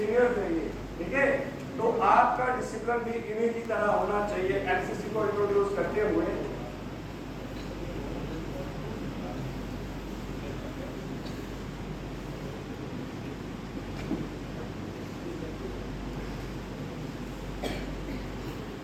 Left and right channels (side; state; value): both; identical; correlation 1.00